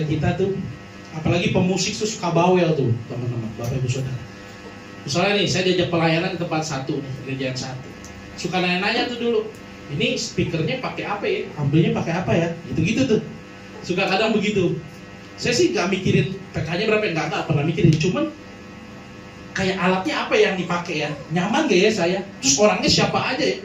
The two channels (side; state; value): both; identical; correlation 1.00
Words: kita tuh, apalagi pemusik tuh suka bawel tuh teman-teman, Bapak Ibu Saudara. Misalnya nih, saya diajak pelayanan di tempat satu nih, gereja yang satu. Suka nanya-nanya tuh dulu, ini speakernya pakai apa ya? Amplinya pakai apa ya? Gitu-gitu tuh. Suka kadang begitu. Saya sih nggak mikirin PK-nya berapa, nggak pernah mikirin. Cuman kayak alatnya apa yang dipakai ya? Nyaman gak ya saya? Terus orangnya siapa aja ya?